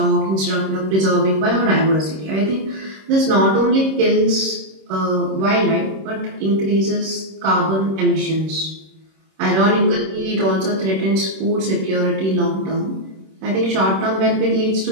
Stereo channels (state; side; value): late; left; 26 ms